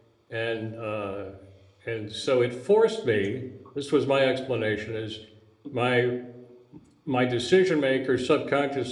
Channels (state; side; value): identical; both; correlation 1.00